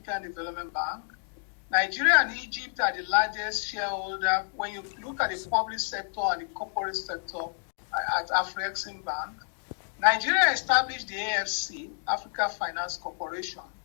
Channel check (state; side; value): silent; right; 58 dB below the other